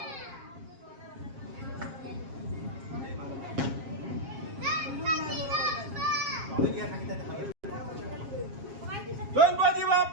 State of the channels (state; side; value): late; left; 7.4 ms